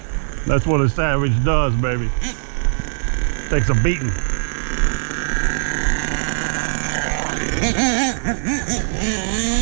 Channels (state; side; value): silent; left; digital silence